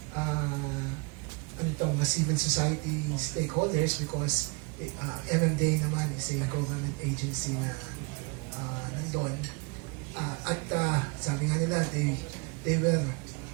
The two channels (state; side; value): quieter; left; 30.4 dB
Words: mga civil society stakeholders because MMDA naman is a government agency na nandun. Sabi nga nila, they were